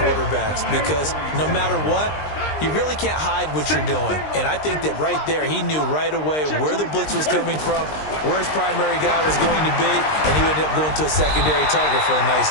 because no matter what, you really can't hide what you're doing. And I think that right there, he knew right away where the blitz was coming from, where his primary guy was going to be, and he ended up going to a secondary target for a nice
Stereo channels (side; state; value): right; late; 20 ms